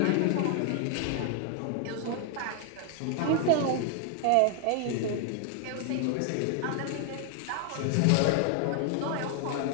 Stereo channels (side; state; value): both; different; correlation 0.00